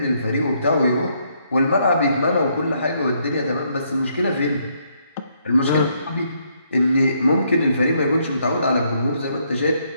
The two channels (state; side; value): inverted; both; correlation -0.73